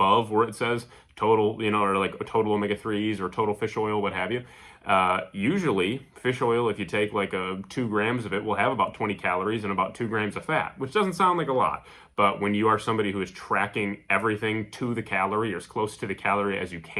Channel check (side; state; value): both; identical; correlation 1.00